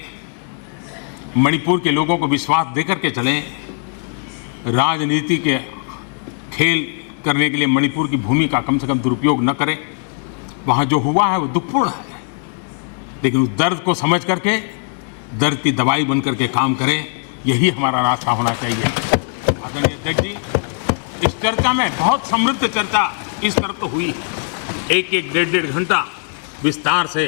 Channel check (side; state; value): right; silent; 57 dB below the other